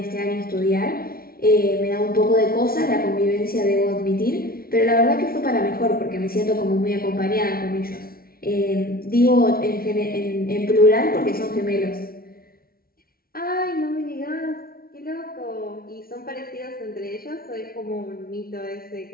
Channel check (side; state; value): right; late; 0.43 ms